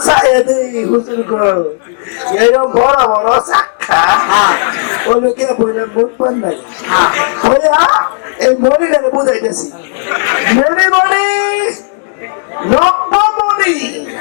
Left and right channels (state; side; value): silent; right; digital silence